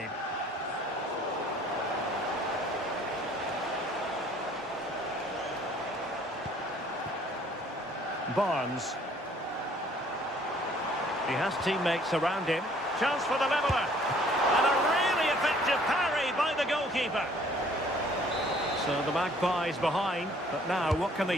Barnes. He has teammates around him. Chance for the leveller. And a really effective parry by the goalkeeper. So the Magpies behind. But now what can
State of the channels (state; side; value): normal; both; correlation 0.58